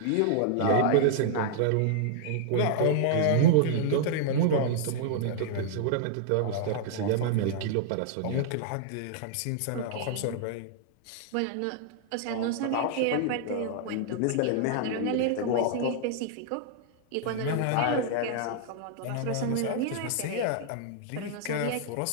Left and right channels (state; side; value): different; both; correlation -0.01